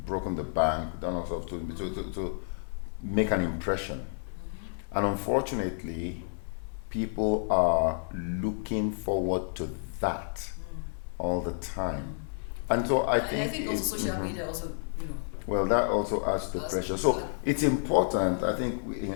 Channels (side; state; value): right; silent; 58 dB below the other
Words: the bank, done all sorts to make an impression. And unfortunately, people are looking forward to that all the time. And so I think also social media also, Well, that also adds to pressure. So it's important, I think,